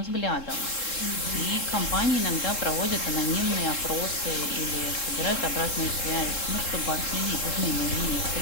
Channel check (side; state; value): right; late; 3.7 ms